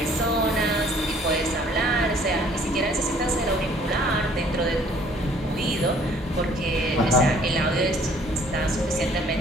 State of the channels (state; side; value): normal; both; correlation 0.58